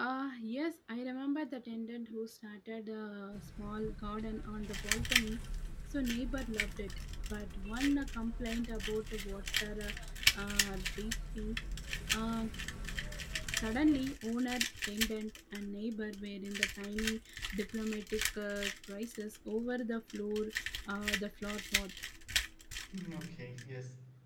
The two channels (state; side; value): identical; both; correlation 1.00